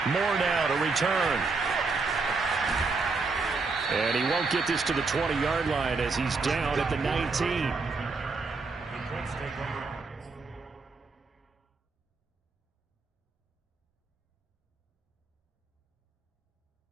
Moore now to return. And he won't get this to the 20-yard line as he's down at the 19.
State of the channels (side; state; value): left; quieter; 4.1 dB